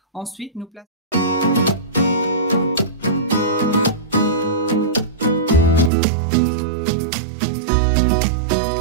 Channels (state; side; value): drops out; left; at 5.9 s